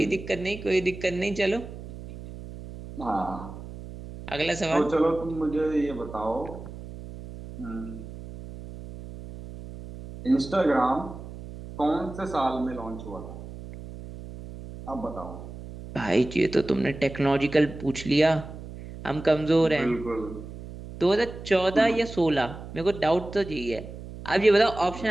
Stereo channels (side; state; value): right; noise; hum, 13 dB below the sound